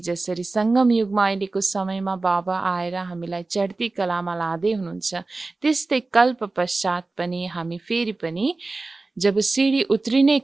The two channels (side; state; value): left; quieter; 3.4 dB